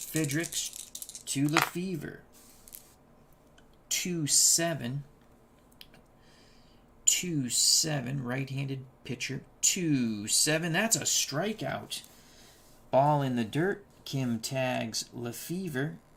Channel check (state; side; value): identical; both; correlation 1.00